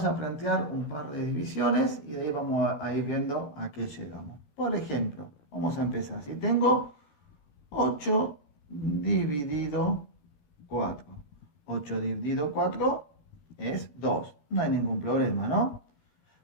a plantear un par de divisiones y de ahí vamos a ir viendo a qué llegamos. Por ejemplo, vamos a empezar. Si tengo 8 dividido 4. 8 dividido 4 es 2. No hay ningún problema, ¿no?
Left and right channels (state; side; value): late; right; 14 ms